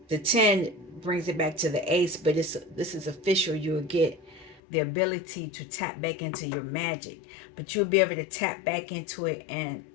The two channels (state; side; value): drops out; right; at 4.6 s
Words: the 10 brings it back to the ace. But this is official. You'll get the ability to tap back into your magic, but you'll be able to tap back into it and